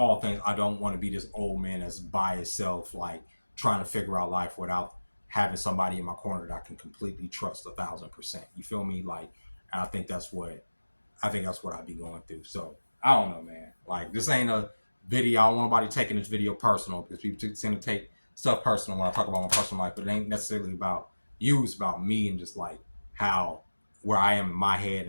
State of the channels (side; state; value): both; inverted; correlation -1.00